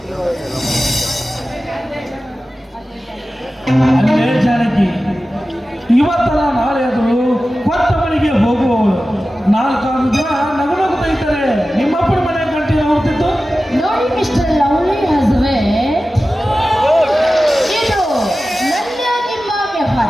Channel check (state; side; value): normal; both; correlation 0.95